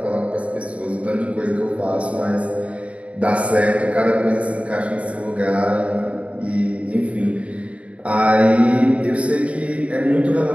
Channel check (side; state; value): left; late; 0.064 ms